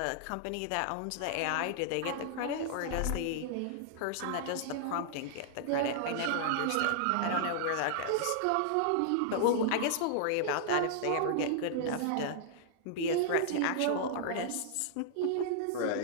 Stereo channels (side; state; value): both; different; correlation -0.01